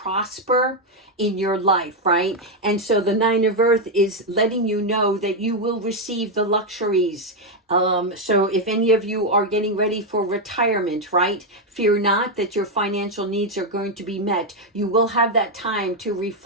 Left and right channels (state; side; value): normal; both; correlation 0.03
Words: in your life, right? And so the Nine of Earth is letting you know that you will receive the luxuries. So if any of you are getting ready for retirement, right? Fear not that your financial needs are going to be met. You will have that time to